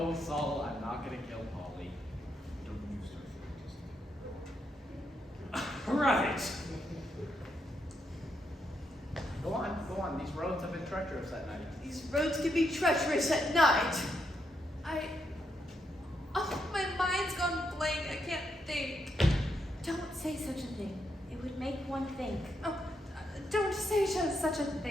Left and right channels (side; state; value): both; normal; correlation 0.80